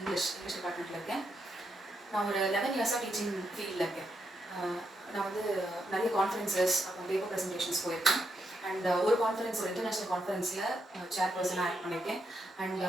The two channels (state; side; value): normal; both; correlation 0.81